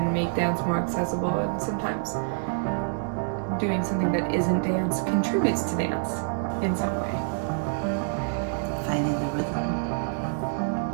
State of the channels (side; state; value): left; silent; digital silence